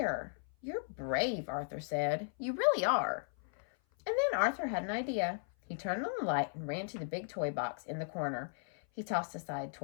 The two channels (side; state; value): right; silent; 54 dB below the other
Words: You're brave, Arthur said. You really are. And then Arthur had an idea. He turned on the light and ran to the big toy box in the corner. He tossed aside